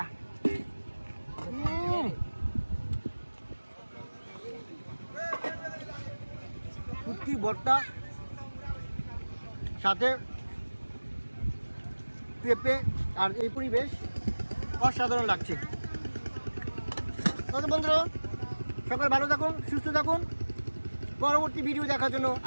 শুটকি ভর্তা সাথে পেঁপে আর এই পরিবেশ অসাধারণ লাগছে। বন্ধুরা সকাল ভালো থাকুন, সুস্থ থাকুন। পরবর্তী ভিডিও দেখার জন্য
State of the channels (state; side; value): inverted; both; correlation -1.00